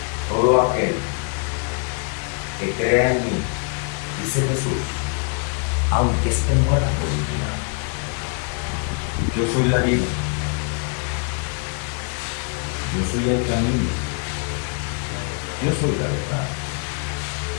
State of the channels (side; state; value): right; quieter; 38.5 dB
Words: Todo aquel que crea en mí, dice Jesús, aunque esté muerto, vivirá. Yo soy la vida. Yo soy el camino. Yo soy la verdad.